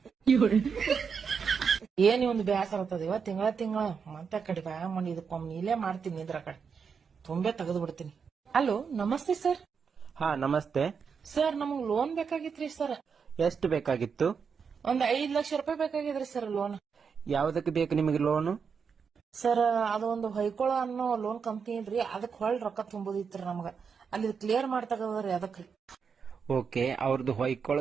ಏನ್ ಒಂದು ಬೇಸರ ಆಗ್ತದ ಇವ ತಿಂಗಳ ಮತ್ತೆ ಕಡೆ ಬ್ಯಾ ಮಾಡಿ ಇದಕ್ಕೊಮ್ಮೆ ಇಲ್ಲೇ ಮಾಡ್ತೀನಿ ಇದ್ರ ಕಡೆ ತುಂಬೆ ತೆಗೆದು ಬಿಡ್ತೀನಿ. ಹಲೋ ನಮಸ್ತೆ ಸರ್. ಹಾ ನಮಸ್ತೆ ಸರ್, ನಮಗ್ ಲೋನ್ ಬೇಕಾಗಿತ್ರಿ ಸರ್. ಎಷ್ಟು ಬೇಕಾಗಿತ್ತು? ಒಂದ್ 5 ಲಕ್ಷ ರೂಪಾಯಿ ಬೇಕಾಗಿದ್ರಿ ಸರ್ ಲೋನ್. ಯಾವ್ದಕ್ಕೆ ಬೇಕು ನಿಮಗೆ ಲೋನು? ಸರ್, ಅದೊಂದು ಹೊಯ್ಕೊಳ ಅನ್ನೋ ಲೋನ್ ಕಂಪ್ನಿ ಇದ್ರಿ, ಅದಕ್ ಹೊಳ್ ರೊಕ್ಕ ತುಂಬುದಿತ್ರಿ ನಮಗ. ಅಲ್ಲಿ ಕ್ಲಿಯರ್ ಮಾಡ್ತಗದ್ರಿ ಅದಕ್ರಿ. ಓಕೆ, ಅವ್ರದ್ದು ಹೊಯ್ಕೊಳ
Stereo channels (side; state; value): left; quieter; 6.1 dB